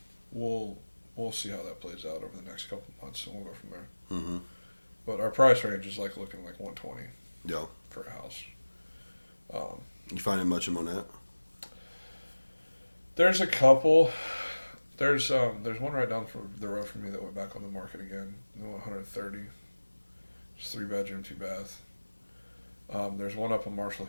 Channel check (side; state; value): both; inverted; correlation -1.00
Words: we'll see how that plays out over the next couple of months, and we'll go from there. Mm-hmm. But our price range is like looking like 120. Yeah. For a house. You finding much in Monette? There's a couple. There's one right down the road from me that went back on the market again. 130. It's 3-bedroom, 2-bath. There's one up on Marshall